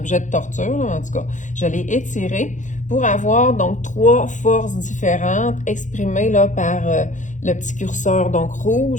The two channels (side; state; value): right; late; 0.36 ms